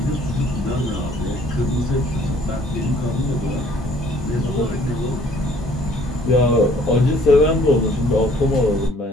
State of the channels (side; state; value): both; normal; correlation 0.58